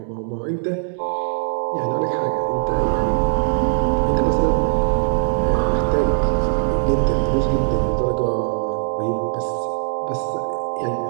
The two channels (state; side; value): silent; left; digital silence